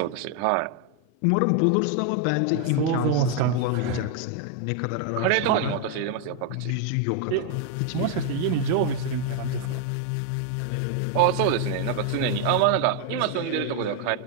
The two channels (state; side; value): different; both; correlation 0.00